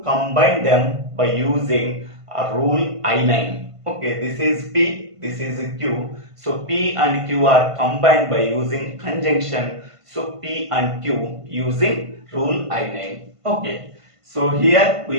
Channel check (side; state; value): left; late; 1.5 ms